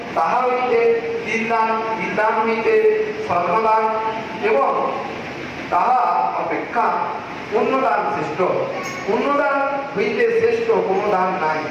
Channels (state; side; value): identical; both; correlation 1.00